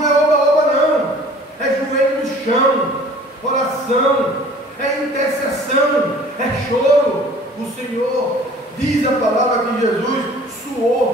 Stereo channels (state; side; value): normal; both; correlation 0.49